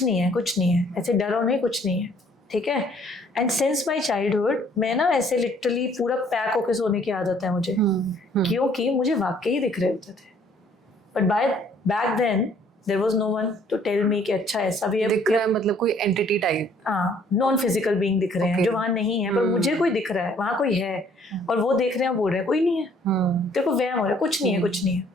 नहीं है, ऐसे डरो नहीं, कुछ नहीं है, ठीक है? एंड सिंस माई चाइल्डहुड मैं ना ऐसे लिटरली पूरा पैक होके सोने की आदत है मुझे, क्योंकि मुझे वाकई दिख रहे होते थे, but by back then there was no one to tell me कि अच्छा ऐसा भी है, दिख रहा है मतलब कोई एंटिटी टाइप, हाँ, नॉन फिजिकल बीइंग दिख रहे हैं जो वहाँ नहीं है, पर मुझे कोई दिख रहा है, वहाँ कोई है, और वो देख रहे हैं, बोल रहे हैं कोई नहीं है, तेरे को वहम हो रहा है, कुछ नहीं है,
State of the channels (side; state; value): both; normal; correlation 0.61